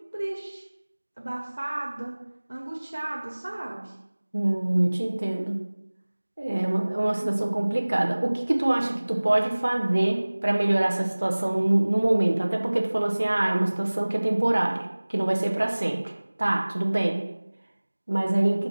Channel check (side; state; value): both; inverted; correlation -1.00